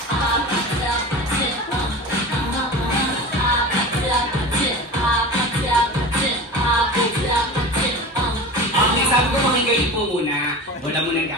Okay, sabi ko makigayin po muna. Wala mo nang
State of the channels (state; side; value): normal; both; correlation 0.33